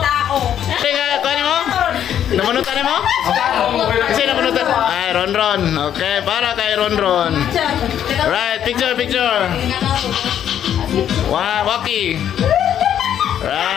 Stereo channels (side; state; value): right; quieter; 9.9 dB